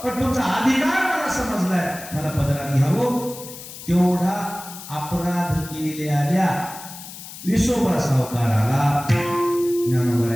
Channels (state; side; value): noise; left; hiss, 13 dB below the sound